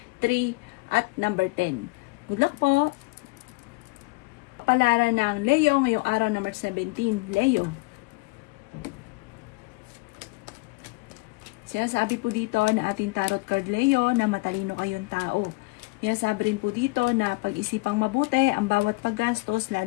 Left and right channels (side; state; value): right; quieter; 25.1 dB